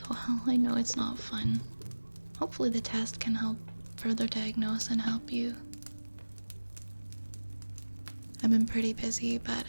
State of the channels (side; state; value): both; inverted; correlation -1.00